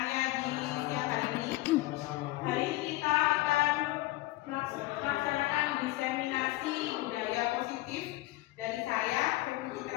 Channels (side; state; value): right; quieter; 18.8 dB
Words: di siang hari ini. Hari ini kita akan melaksanakan diseminasi budaya positif dari saya, Feby